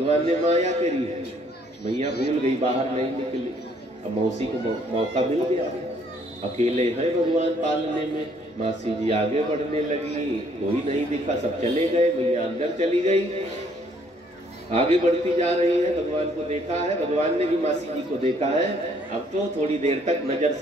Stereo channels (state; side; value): normal; both; correlation 0.64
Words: ने माया करी है, मैया भूल गई, बाहर नहीं निकली। अब मौसी को मौका मिल गया, अकेले है भगवान पालने में। मासी जी आगे बढ़ने लगी, कोई नहीं दिखा, सब चले गए। मैया अंदर चली गई, आगे बढ़ती जा रही है। भगवान को देखा है, भगवान ने भी मासी जी को देखा है। अब तो थोड़ी देर तक नजर